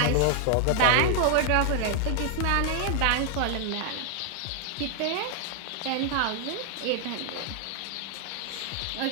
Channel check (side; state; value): both; different; correlation 0.00